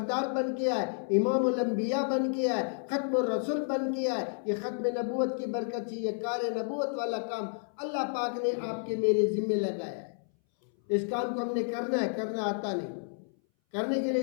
बन के आए, इमामुल अंबिया बन के आए, खत्मुर रसूल बन के आए। ये खत्म नबूवत की बरकत से ये कार नबूवत वाला काम अल्लाह पाक ने आपके मेरे जिम्मे लगाया है। इस काम को हमने करना है, करना आता नहीं, करने के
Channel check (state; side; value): silent; right; 57 dB below the other